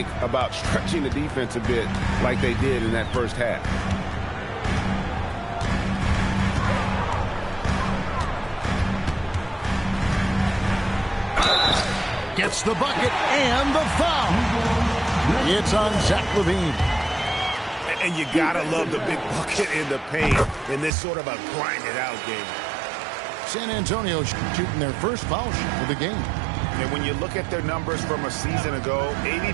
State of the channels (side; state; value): left; drops out; at 20.9 s